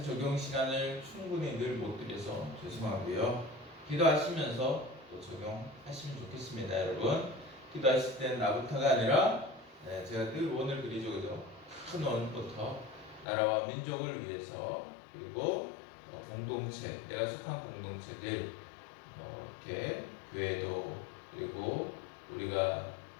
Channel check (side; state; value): right; drops out; at 13.2 s